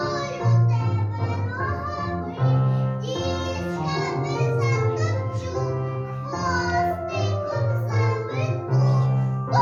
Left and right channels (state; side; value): identical; both; correlation 1.00